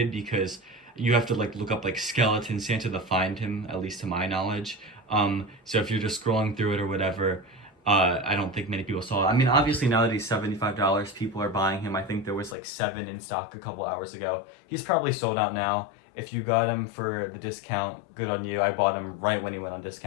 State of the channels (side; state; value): right; drops out; at 12.6 s